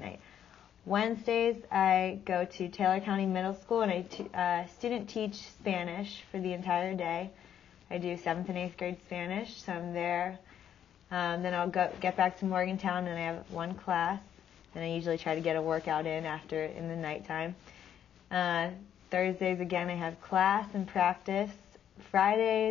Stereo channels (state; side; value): quieter; right; 9.7 dB